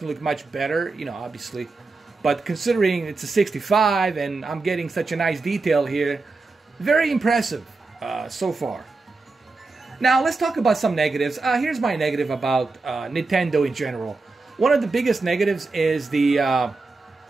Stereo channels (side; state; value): left; quieter; 3.7 dB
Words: going to look much better, you know, obviously. But considering it's a 65 and I'm getting such a nice detail here, very impressive so far. Now, let's talk about some negatives. Here's my negative about Nintendo in general. One of the biggest negatives is they